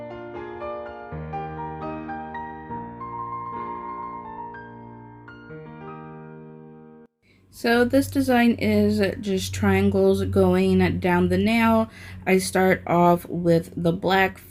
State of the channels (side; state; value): both; identical; correlation 1.00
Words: So this design is just triangles going down the nail. I start off with the black